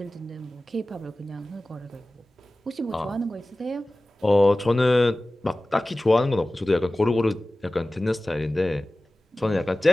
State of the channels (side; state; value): both; normal; correlation 0.97